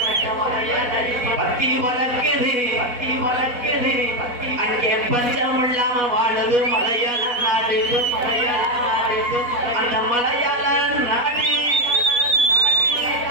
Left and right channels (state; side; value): late; left; 4.1 ms